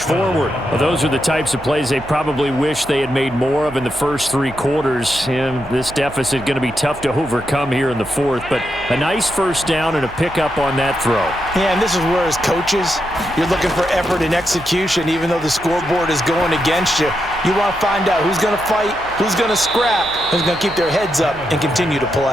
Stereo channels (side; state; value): right; noise; hum, 18 dB below the sound